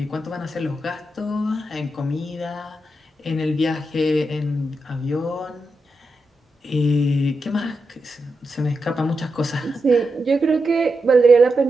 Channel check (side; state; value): both; normal; correlation 0.87